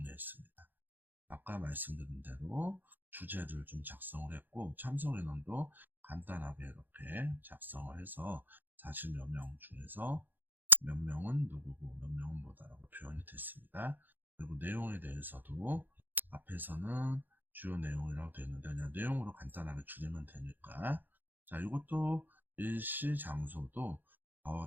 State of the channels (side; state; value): left; late; 0.089 ms